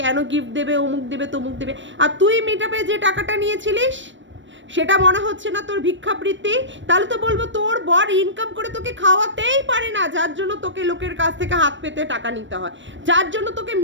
গিফট দেবে, অমুক দেবে তমুক দেবে, আর তুই মিটআপে যে টাকাটা নিয়েছিলিস সেটা মনে হচ্ছে না তোর ভিক্ষাবৃত্তি? তাহলে তো বলবো তোর বর ইনকাম করে তোকে খাওয়াতেই পারে না, যার জন্য তোকে লোকের কাছ থেকে হাত পেতে টাকা নিতে হয়, যার জন্য তোকে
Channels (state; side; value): late; left; 0.54 ms